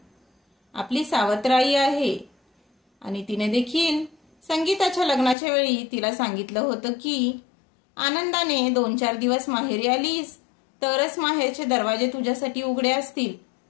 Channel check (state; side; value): drops out; right; at 5.4 s